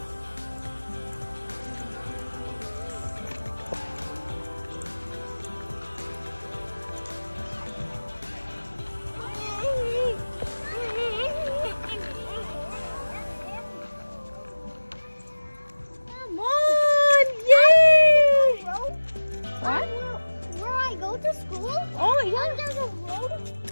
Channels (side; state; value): both; inverted; correlation -1.00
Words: Come on, yay! What? Where I go to school? Oh, yeah. There's a road.